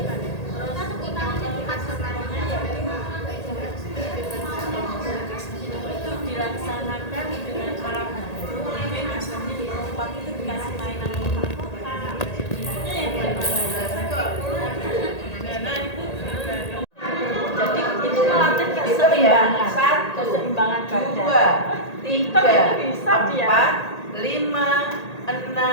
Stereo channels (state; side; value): late; right; 1.8 ms